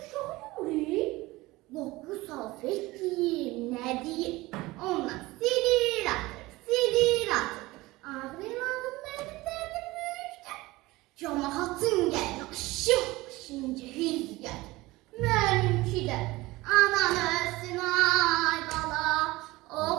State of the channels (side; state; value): left; quieter; 20.1 dB